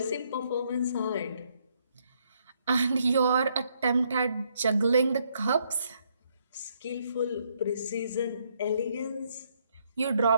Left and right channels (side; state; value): both; inverted; correlation -0.72